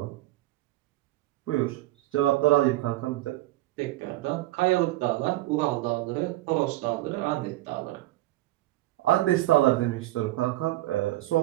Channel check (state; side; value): quieter; left; 16.8 dB